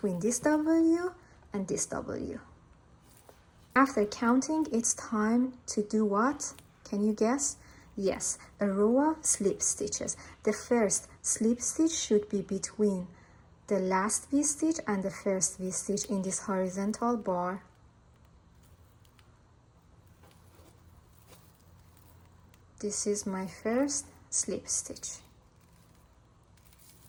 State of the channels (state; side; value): identical; both; correlation 1.00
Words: this W and this W. After counting, it's time to do what? Can you guess? Yes, a row of slip stitches. The first slip stitch should be between the last V-stitch and the first V-stitch in this horizontal bar. This is my first slip stitch.